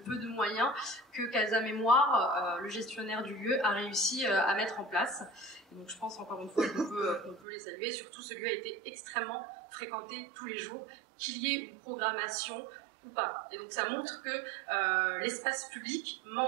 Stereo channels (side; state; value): left; drops out; at 7.5 s